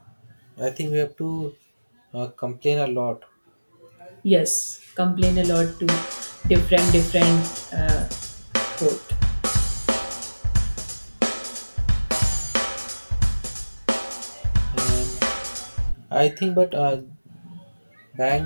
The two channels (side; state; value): both; inverted; correlation -1.00